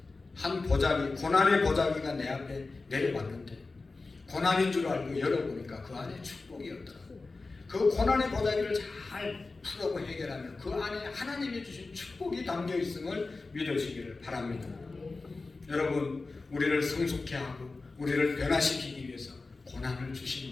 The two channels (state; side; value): quieter; right; 3.7 dB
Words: 한 보자기, 고난의 보자기가 내 앞에 내려왔는데 고난인 줄 알고 열어보니까 그 안에 축복이었더라고요. 그 고난의 보자기를 잘 풀고 해결하면 그 안에 하나님이 주신 축복이 담겨 있음을 믿으시기를 바랍니다. 여러분, 우리를 성숙케 하고 우리를 변화시키기 위해서 고난을